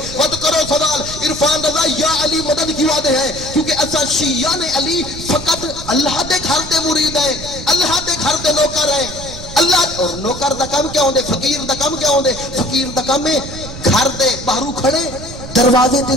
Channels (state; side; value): noise; right; rumble, 12 dB below the sound